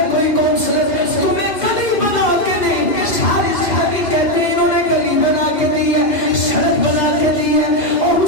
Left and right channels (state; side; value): late; right; 2.1 ms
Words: کوئی کونسلر تمہیں گلی بنا کے نہیں ساری جگہ کہتے ہیں انہوں نے گلی بنا کے دی ہے سڑک بنا کے دی ہے اور